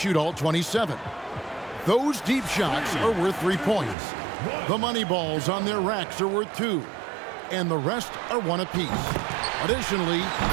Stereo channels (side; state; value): left; drops out; at 4.0 s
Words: all 27. Those deep shots are worth 3 points. The money balls on their racks are worth 2, and the rest are 1 apiece. Additionally,